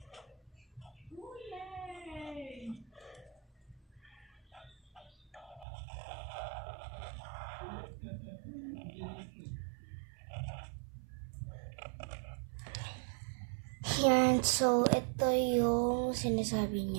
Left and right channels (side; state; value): left; drops out; at 5.7 s